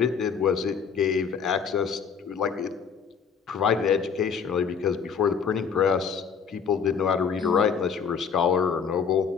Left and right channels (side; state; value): right; quieter; 6.5 dB